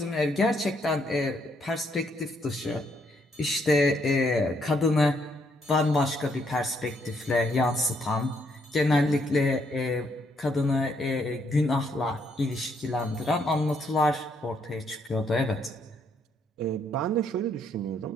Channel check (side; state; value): both; normal; correlation 0.72